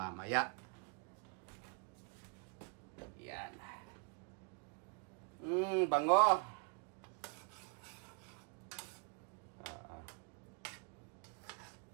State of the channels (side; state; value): left; quieter; 36.4 dB